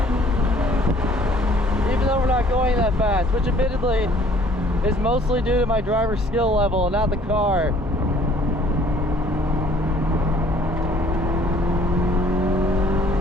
Even though we're not going that fast, which admittedly is mostly due to my driver's skill level, not the car.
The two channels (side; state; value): both; normal; correlation 0.57